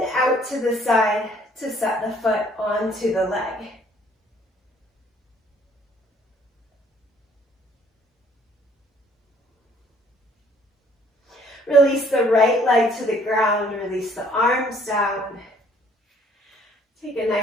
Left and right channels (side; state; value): both; normal; correlation 0.61